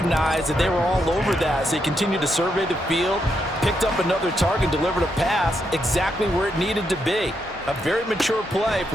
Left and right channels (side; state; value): both; normal; correlation 0.80